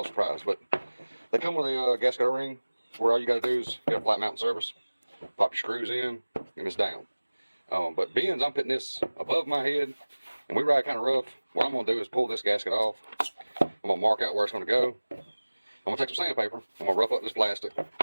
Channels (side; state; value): both; inverted; correlation -1.00